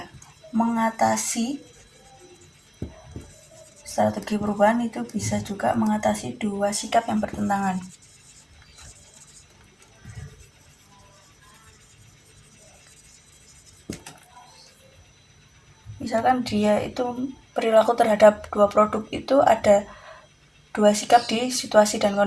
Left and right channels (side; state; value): both; identical; correlation 1.00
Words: mengatasi strategi perubahan itu bisa juga mengatasi dua sikap yang bertentangan. Misalkan dia itu perilaku terhadap dua produk itu ada dua sikap di situasi dan